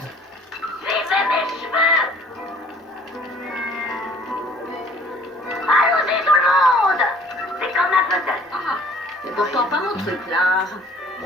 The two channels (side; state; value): both; normal; correlation 0.53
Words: Suivez mes cheveux. Allons-y tout le monde. C'est comme un puzzle. Ah, c'est pourtant pas mon truc là.